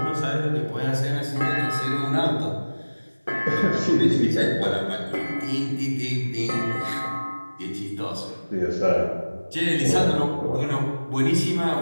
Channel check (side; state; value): both; inverted; correlation -1.00